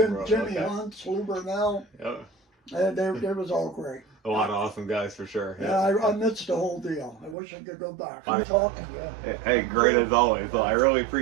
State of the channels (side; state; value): left; drops out; at 7.4 s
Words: Hunt, Lou Burnell. Yep. They was all great. A lot of awesome guys for sure. Yeah, I missed the whole deal. I wish I could go back. I'm talking to you. Hey, great as always. Well, I really